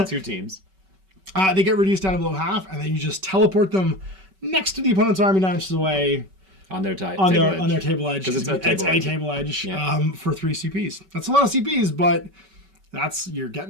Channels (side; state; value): left; late; 5.2 ms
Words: 2 teams. They get reduced down to below half, and then you just teleport them next to the opponent's army 9 inches away on their table edge. Because it's a table edge for 3 CPs. That's a lot of CPs, but you're